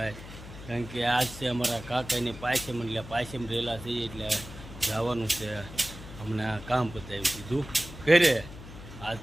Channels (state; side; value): noise; left; hum, 14 dB below the sound